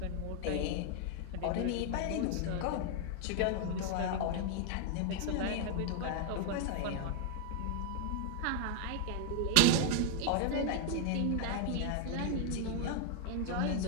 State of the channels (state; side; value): different; both; correlation 0.00